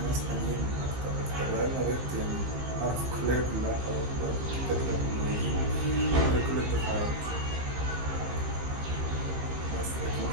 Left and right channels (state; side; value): late; left; 15 ms